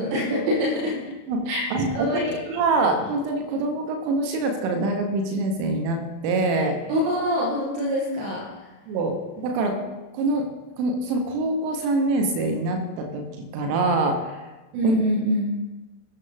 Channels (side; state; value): left; late; 36 ms